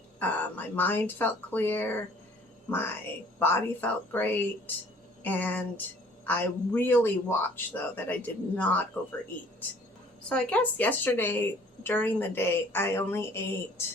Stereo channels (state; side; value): normal; both; correlation 0.55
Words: My mind felt clear. My body felt great. And I really watched, though, that I did not overeat. So I guess yesterday during the day, I only